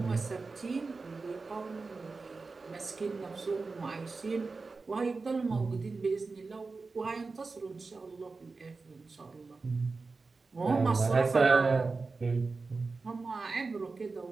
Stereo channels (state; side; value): quieter; left; 4.1 dB